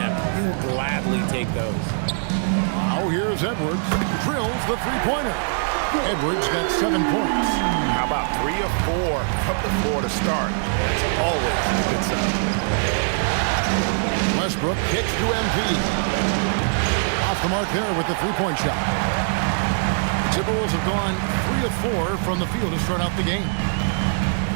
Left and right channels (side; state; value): left; silent; 56 dB below the other